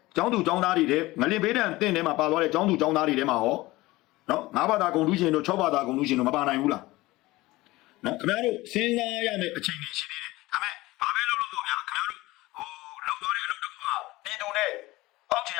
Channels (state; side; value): quieter; right; 19.4 dB